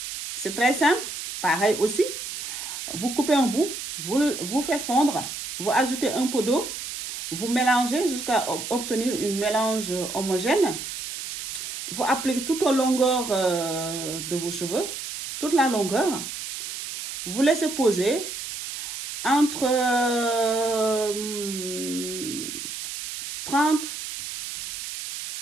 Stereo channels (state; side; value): noise; right; hiss, 7 dB below the sound